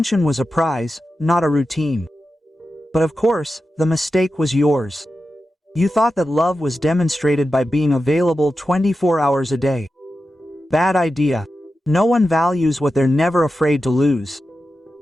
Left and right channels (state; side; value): normal; both; correlation 0.91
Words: was a prize, not a routine. But of course, the mistake was yours. You thought that love was demonstrated by being available 24 hours a day. Bad idea. No one values what they're never afraid to lose.